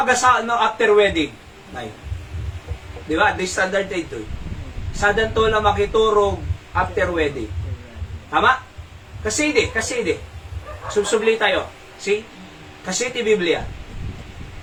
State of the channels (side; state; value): both; identical; correlation 1.00